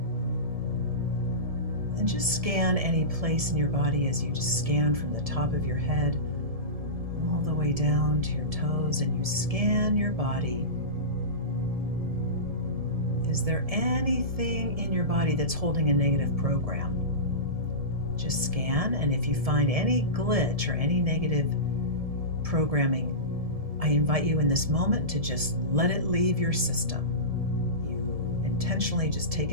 And just scan any place in your body as you just scan from the top of your head all the way down to your toes, and you scan your body. Is there anything in your body that's holding a negative program? Just scan, and if you find any glitch or any negative programming, I invite you in this moment to just let it leave your system. You intentionally just take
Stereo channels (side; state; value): left; late; 1.7 ms